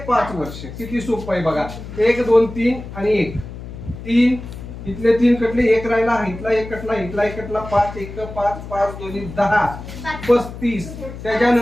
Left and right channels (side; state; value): left; noise; hum, 12 dB below the sound